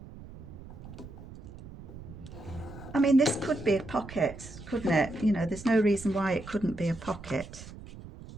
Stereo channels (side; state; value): right; noise; rumble, 15 dB below the sound